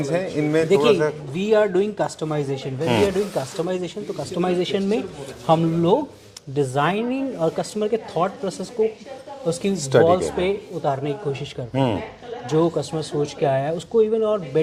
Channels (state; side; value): identical; both; correlation 1.00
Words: हैं, इनमें थोड़ा देखिए, सा we are doing customization, when we are doing customization, तो कस्टमाइजेशन में हम लोग डिजाइनिंग और कस्टमर के थॉट प्रोसेस को उसकी वॉल्स पे उतारने की कोशिश करते हैं। जो कस्टमर सोच के आया है उसको इवन और